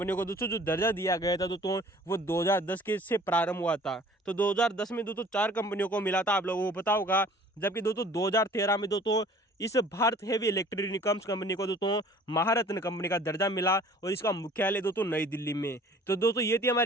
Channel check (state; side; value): normal; both; correlation 0.50